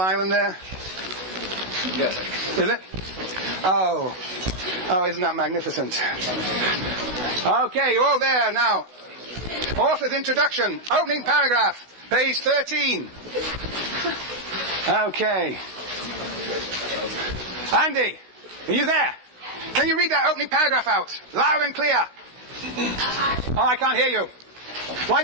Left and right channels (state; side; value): late; left; 16 ms